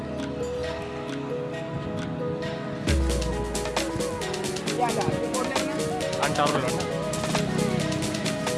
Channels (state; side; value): identical; both; correlation 1.00